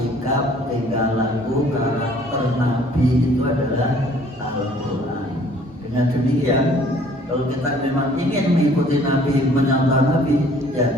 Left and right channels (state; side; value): normal; both; correlation 0.56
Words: tingkah laku, karakter Nabi itu adalah Al-Quran. Dengan demikian, kalau kita memang ingin mengikuti Nabi, menyantau Nabi, ya